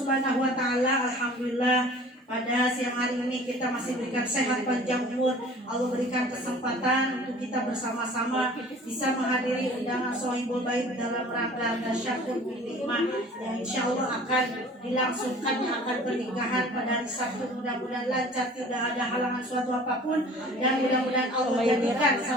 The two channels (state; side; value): normal; both; correlation 0.47